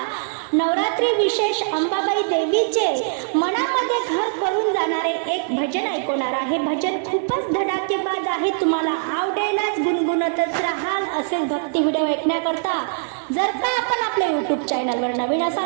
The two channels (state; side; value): silent; left; digital silence